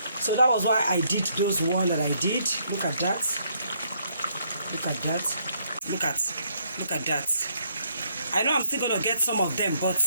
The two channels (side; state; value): both; inverted; correlation -0.70